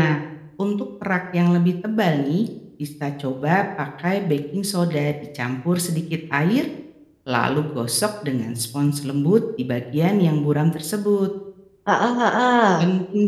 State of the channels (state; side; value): identical; both; correlation 1.00